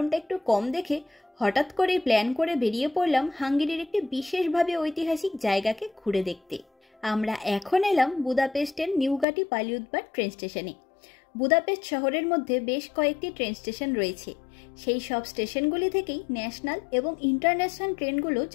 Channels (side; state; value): right; drops out; at 9.2 s